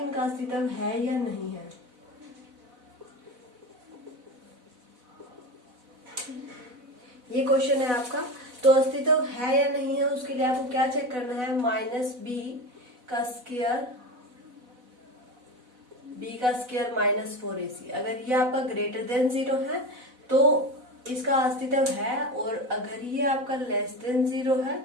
इनका अस्तित्व है या नहीं है। ये क्वेश्चन है आपका, तो अस्तित्व है या नहीं है उसके लिए आपको क्या चेक करना है? माइनस बी का स्क्वायर माइनस 4ac। अगर ये आपका ग्रेटर देन 0 है तो इसका अस्तित्व है, और अगर ये आपका लेस देन 0 है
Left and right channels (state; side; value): late; left; 4.0 ms